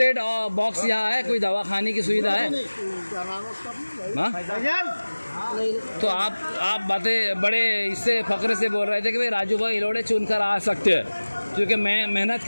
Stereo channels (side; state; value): both; inverted; correlation -1.00